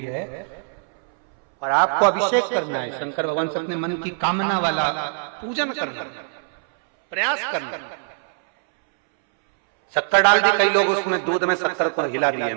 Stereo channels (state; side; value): silent; left; 64 dB below the other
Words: है और आपको अभिषेक करना है शंकर भगवान से अपने मन की कामना वाला पूजन करना, प्रयास करना। शक्कर डाल दी, कई लोग उसमें दूध में शक्कर को हिला दिए,